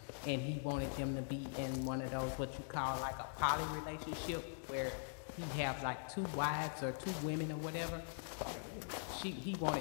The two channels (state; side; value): silent; right; digital silence